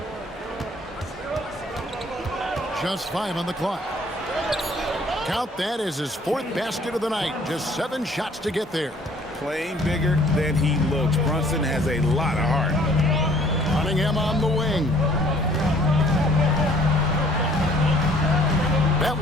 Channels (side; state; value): both; normal; correlation 0.57